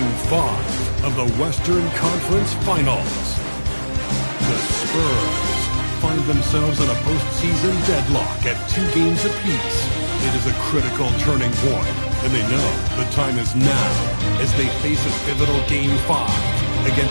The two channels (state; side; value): inverted; both; correlation -1.00